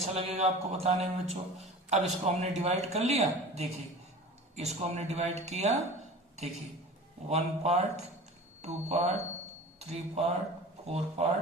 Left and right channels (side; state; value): both; normal; correlation 0.38